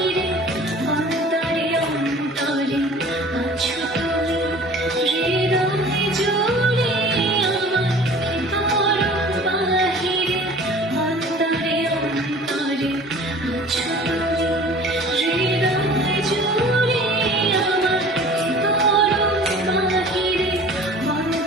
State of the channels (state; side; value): normal; both; correlation 0.45